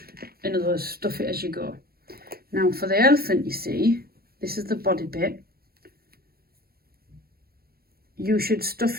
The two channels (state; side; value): late; left; 0.44 ms